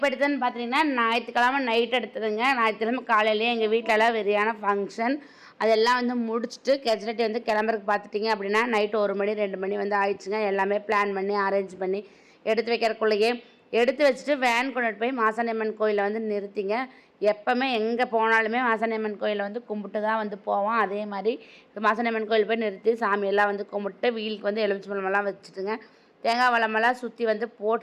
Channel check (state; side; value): identical; both; correlation 1.00